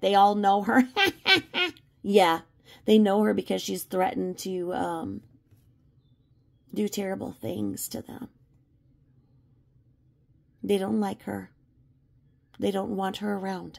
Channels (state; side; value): identical; both; correlation 1.00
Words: all know her. Yeah, they know her because she's threatened to do terrible things to them. They don't like her. They don't want her